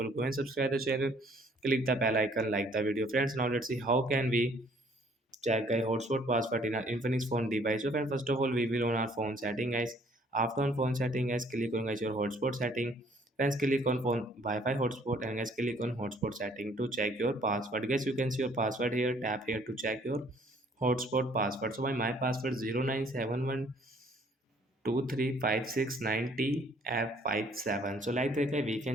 go and subscribe the channel, click the bell icon, like the video friends. Now let's see how can we check a hotspot password in our Infinix phone device. So friend, first of all, we will on our phone setting guys. After on phone setting guys, click on guys your hotspot setting. Friends, click on phone Wi-Fi hotspot and guys click on hotspot setting to check your password. Guys, you can see your password here. Tap here to check your hotspot password. So my password 0971123569T F57. So like that guys, we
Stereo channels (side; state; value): both; normal; correlation 0.60